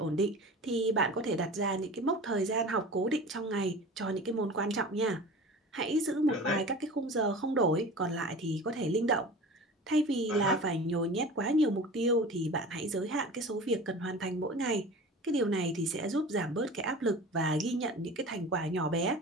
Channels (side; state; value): both; normal; correlation 0.37